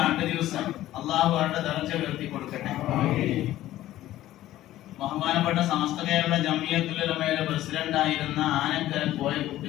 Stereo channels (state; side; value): quieter; right; 14.4 dB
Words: ആണ്ട് ദിവസം. അള്ളാഹു അവരുടെ ദർജ ഉയർത്തി കൊടുക്കട്ടെ. ബഹുമാനപ്പെട്ട സമസ്ത കേരള ജമിയത്തുൽ ഉലമയുടെ പ്രസിഡന്റ് ആയിരുന്ന ആനക്കര കോയക്കുട്ടി